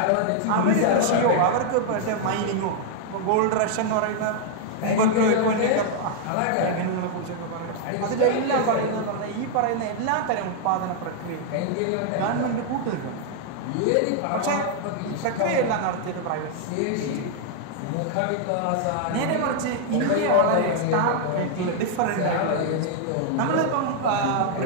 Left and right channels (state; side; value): different; both; correlation 0.00